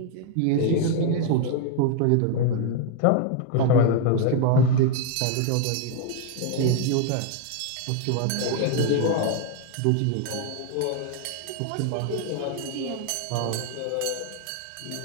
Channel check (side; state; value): both; different; correlation 0.00